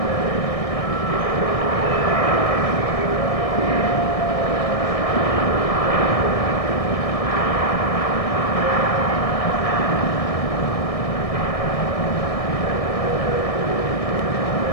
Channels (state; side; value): late; right; 1.6 ms